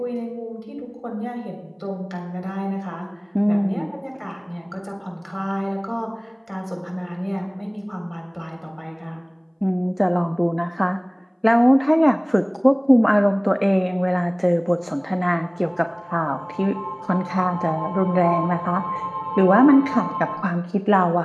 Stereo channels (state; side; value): identical; both; correlation 1.00